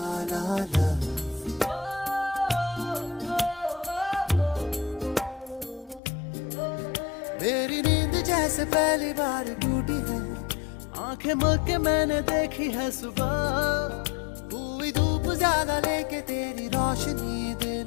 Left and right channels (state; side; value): drops out; right; at 6.0 s